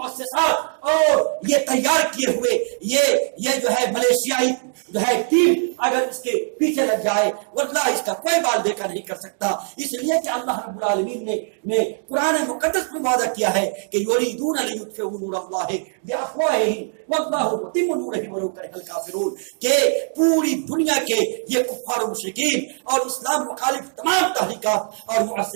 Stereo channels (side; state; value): left; silent; 63 dB below the other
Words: اور یہ تیار کیے ہوئے یہ جو ہے ملیشیائی جو ہے ٹیم اگر اس کے پیچھے لگ جائے، واللہ اس کا کوئی بال دیکھا نہیں کر سکتا۔ اس لیے کہ اللہ رب العالمین نے قرآن مقدس میں وعدہ کیا ہے کہ یریدون لیطفئوا نور اللہ بافواہہم واللہ متم نورہ ولو کرہ الکافرون، کہ پوری دنیا کے یہ کفار و مشرکین اور اسلام مخالف تمام تحریکات اور